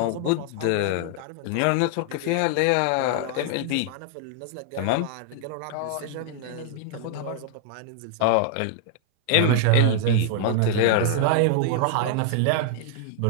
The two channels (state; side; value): different; both; correlation 0.00